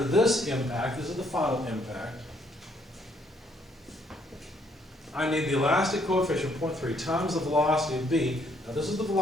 this impact, this is the final impact, I need the elastic coefficient, 0.3, times the velocity of B. Now this is the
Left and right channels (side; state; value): both; normal; correlation 0.68